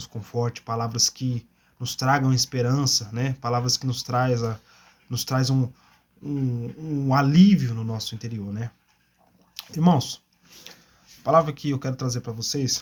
confortem, palavras que nos tragam esperança, Palavras que nos traz um alívio no nosso interior, Irmãos, a palavra que eu quero trazer para vocês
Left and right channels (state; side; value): identical; both; correlation 1.00